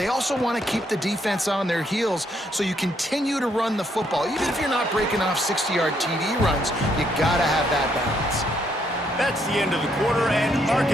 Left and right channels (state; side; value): normal; both; correlation 0.72